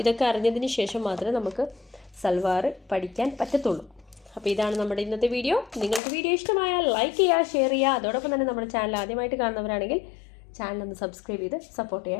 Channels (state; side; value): drops out; right; at 6.0 s